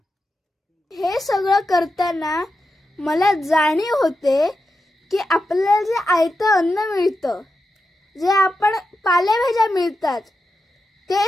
हे सगळं करताना मला जाणीव होते की आपल्याला जे आयतं अन्न मिळतं, जे आपण पालेभाज्या मिळतात,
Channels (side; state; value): both; normal; correlation 0.89